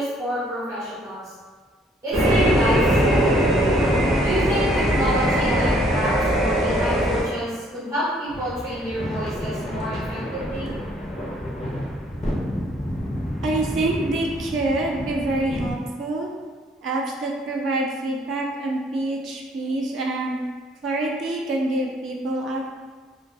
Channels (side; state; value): both; normal; correlation 0.63